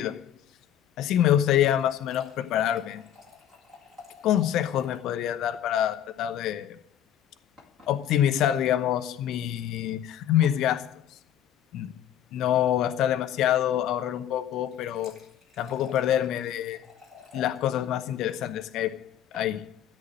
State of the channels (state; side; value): quieter; right; 10.7 dB